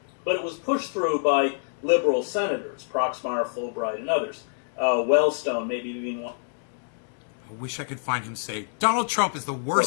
but it was pushed through by liberal senators, Proxmire, Fulbright, and others. Wellstone, maybe even one. I wish I could find him say Donald Trump is the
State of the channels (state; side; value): silent; right; digital silence